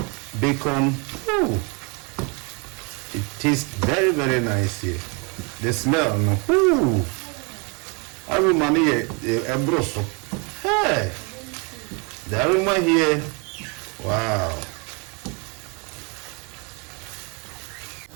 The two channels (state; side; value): quieter; left; 32.8 dB